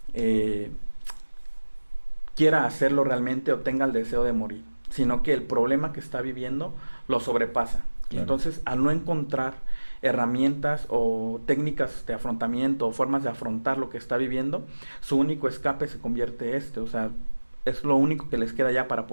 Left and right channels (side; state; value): both; inverted; correlation -1.00